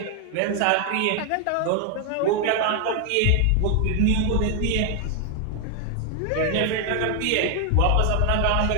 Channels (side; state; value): both; different; correlation 0.00